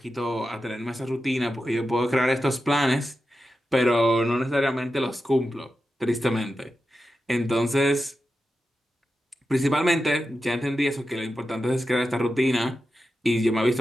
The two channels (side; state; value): both; normal; correlation 0.90